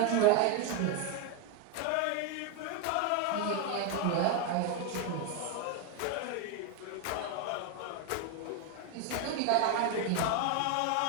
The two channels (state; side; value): different; both; correlation 0.01